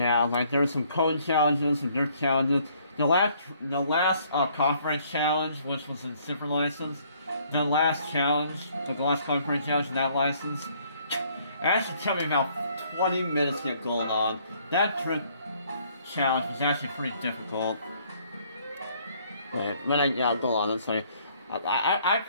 like there's some code challenges, some dirt challenges. The last conference challenge, which was in Super License, the last conference challenge in that license, it actually took me about 20 minutes to get gold on. That trick challenge was actually pretty difficult. But I got gold on it, so I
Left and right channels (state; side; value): inverted; both; correlation -0.64